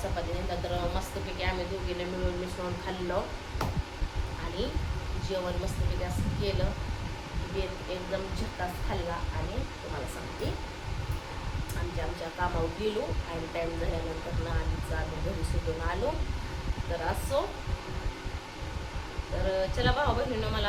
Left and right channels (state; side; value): identical; both; correlation 1.00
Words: चपाती नंतर मस्तपैकी आम्ही दोघीने मिळून मिसळून खाल्लं आणि जेवण मस्तपैकी असं केलं. बेत एकदम झक्कास खाल्ला आणि तुम्हाला सांगते आमच्या कामावर गेलो आणि टाईम झाल्यानंतर ना आम्ही घरी सुटून आलो. तर असो, तर चला भाऊ बहिणीनं